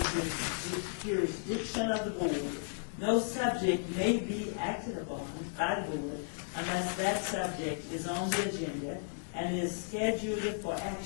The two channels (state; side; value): silent; right; digital silence